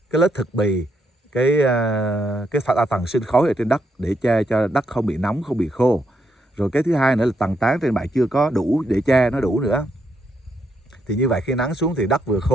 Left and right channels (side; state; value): both; normal; correlation 0.78